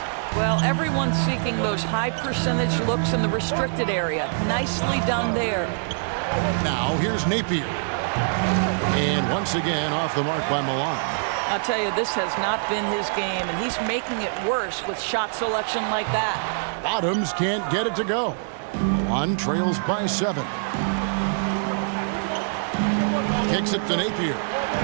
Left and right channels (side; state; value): left; silent; 62 dB below the other